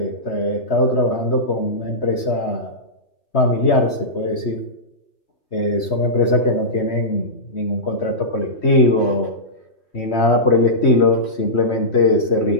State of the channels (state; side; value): late; right; 3.2 ms